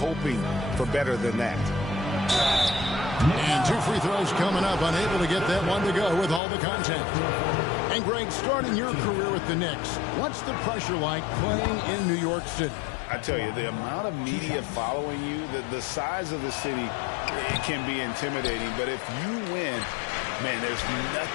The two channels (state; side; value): drops out; right; at 6.4 s